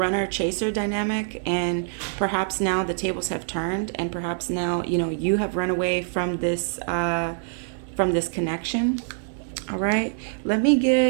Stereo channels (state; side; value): silent; left; digital silence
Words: chaser dynamic, and perhaps now the tables have turned, and perhaps now, you know, you have run away from this connection. All right. I'm